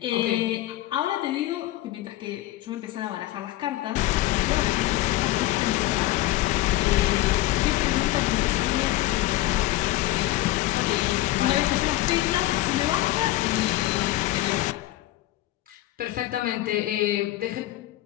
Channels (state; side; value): quieter; right; 16.4 dB